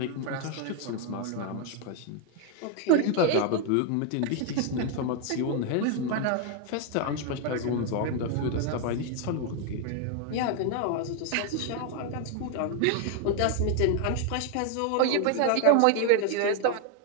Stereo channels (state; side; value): different; both; correlation 0.00